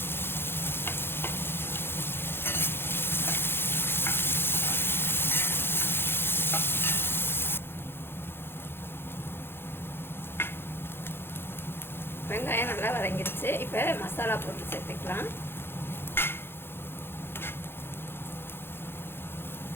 வெங்காயம் நல்லா வதங்கிடுச்சு. இப்போ மசாலா போட்டு சேர்த்துக்கலாம்.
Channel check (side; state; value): right; late; 0.11 ms